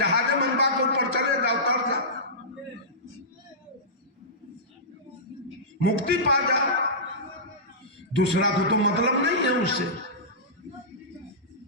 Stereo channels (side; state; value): both; normal; correlation -0.18